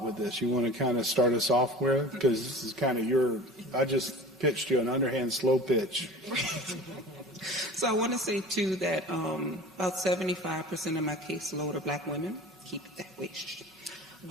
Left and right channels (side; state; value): both; normal; correlation 0.39